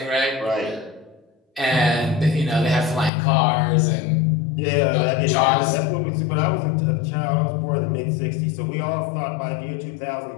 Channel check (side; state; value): right; drops out; at 3.1 s